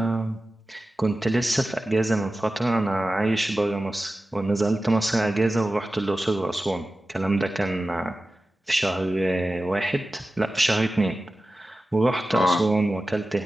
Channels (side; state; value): both; normal; correlation 0.95